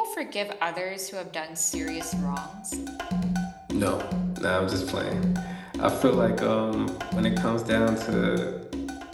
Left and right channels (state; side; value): identical; both; correlation 1.00